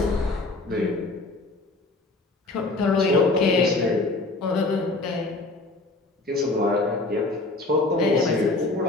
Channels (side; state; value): right; quieter; 3.1 dB